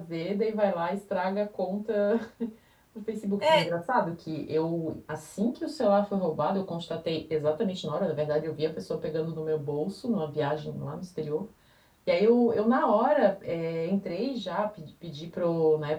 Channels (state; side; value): identical; both; correlation 1.00